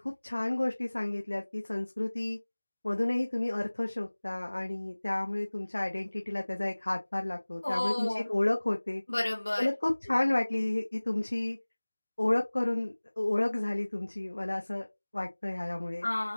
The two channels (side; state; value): both; inverted; correlation -1.00